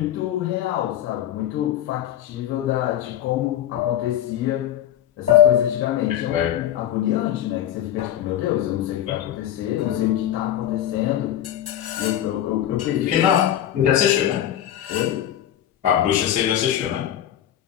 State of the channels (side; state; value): right; quieter; 11.4 dB